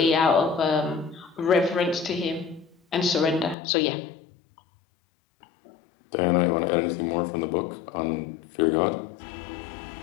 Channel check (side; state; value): right; drops out; at 3.6 s